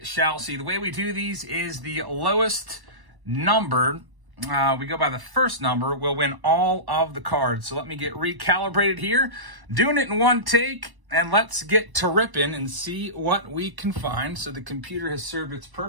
shall see. The way we do these is the lowest number. We go by the first number, we'll win all of the cards. So let me get recalibrated here. Doing it in one take, and let's get to ripping and see what we can find. So the computer has served its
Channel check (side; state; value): left; late; 1.0 ms